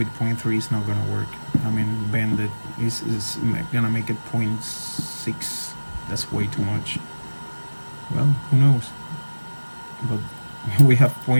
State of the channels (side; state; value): both; inverted; correlation -1.00